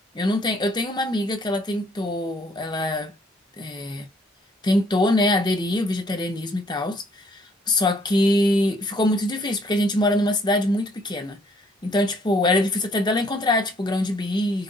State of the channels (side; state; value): both; normal; correlation 0.64